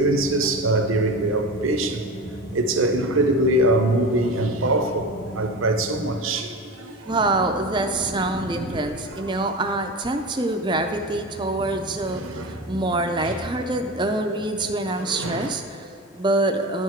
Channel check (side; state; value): both; normal; correlation 0.27